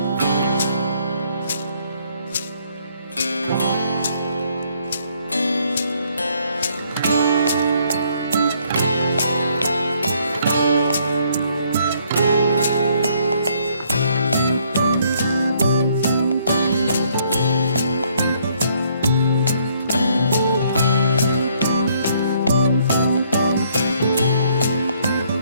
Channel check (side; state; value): both; inverted; correlation -0.67